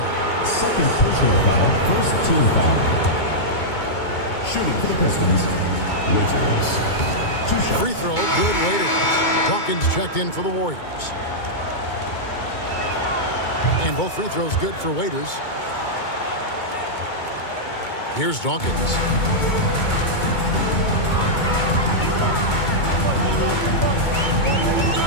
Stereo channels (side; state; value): right; late; 2.2 ms